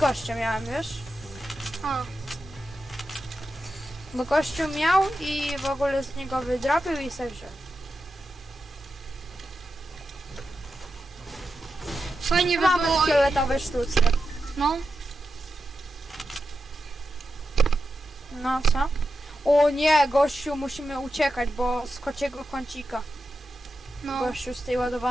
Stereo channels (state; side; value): normal; both; correlation 0.89